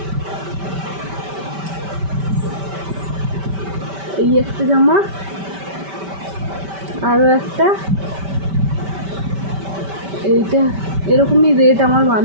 এই একটা জামা, আরও একটা, এইটা এরকমই রেট আমার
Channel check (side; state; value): left; late; 5.1 ms